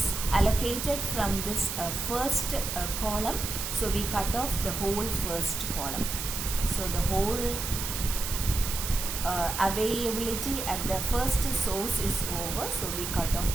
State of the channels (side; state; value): right; noise; hiss, 4 dB below the sound